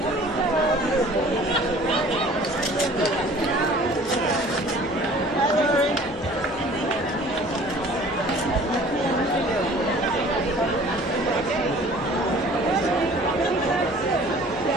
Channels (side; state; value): both; normal; correlation 0.49